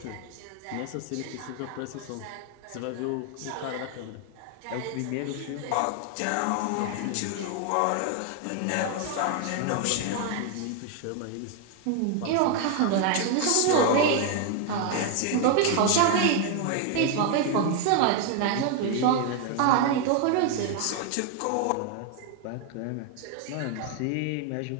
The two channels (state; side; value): different; both; correlation 0.01